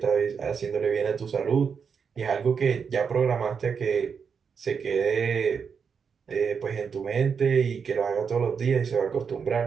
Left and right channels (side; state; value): left; quieter; 6.3 dB